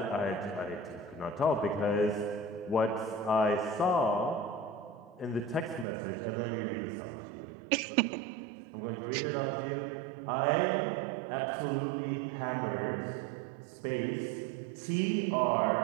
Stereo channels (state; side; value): drops out; left; at 5.9 s